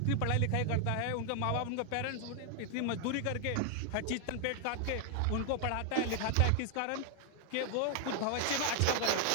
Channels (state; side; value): different; both; correlation 0.00